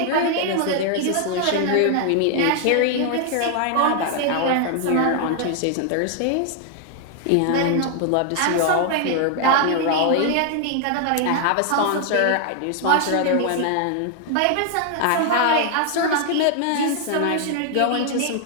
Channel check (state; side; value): different; both; correlation 0.00